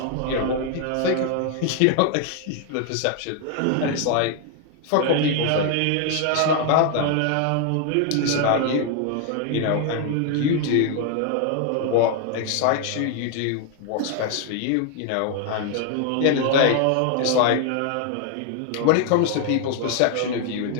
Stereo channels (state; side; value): different; both; correlation 0.00